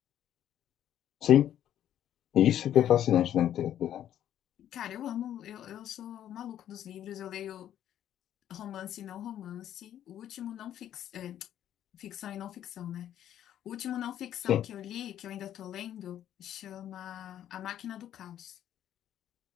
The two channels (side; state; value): right; quieter; 11.0 dB